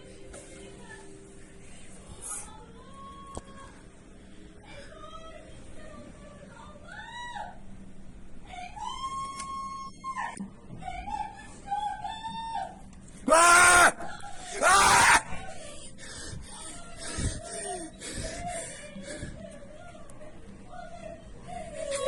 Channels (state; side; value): identical; both; correlation 1.00